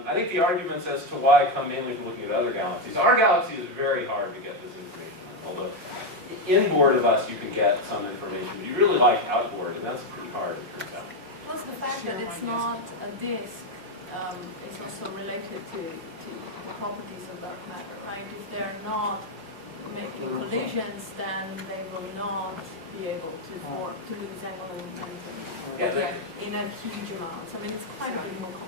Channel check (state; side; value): late; left; 5.5 ms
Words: think the arguments as to why come mainly from looking at other galaxies. Our galaxy is very hard to get this information, although inboard of us you can get some information, but you really like outboard, and that's pretty hard, it turns out. Plus the fact that it's not a disk is also related to the properties of dark matter, right? If they're not making collisions, then they will not be able to form, to lose angular momentum in a huge amount. I mean, it's quite a bit more